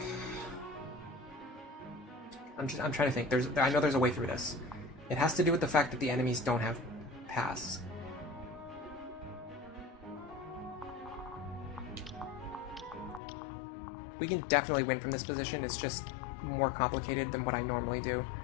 I'm trying to think. I know there's a way through this. It has to do with the fact that the enemies don't have paths. We can definitely win from this position. It's just more complicated than what I normally do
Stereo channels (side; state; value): right; drops out; at 13.2 s